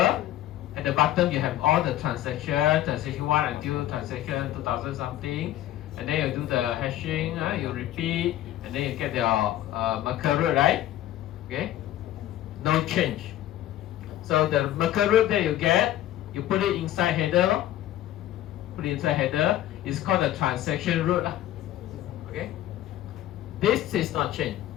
at the bottom you have all the transactions, transaction 1 until transaction 2000 something. And then you do the hashing, you repeat, and then you get your Merkur root, right? Okay, no change. So the Merkur root that you get, you put it inside header. Put it inside header. It's called the transaction root. Okay, this is not changed.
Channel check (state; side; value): quieter; right; 13.3 dB